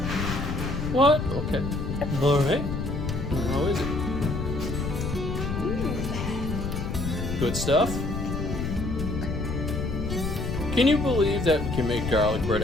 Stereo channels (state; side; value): noise; left; rumble, 3 dB below the sound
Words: What? Okay. All right. How is it? Good stuff? Can you believe that we can make garlic bread